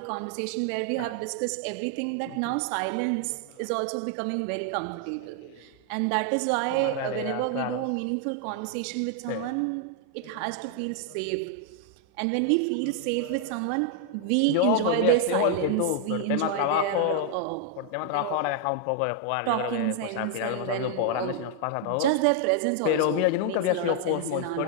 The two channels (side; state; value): both; different; correlation 0.00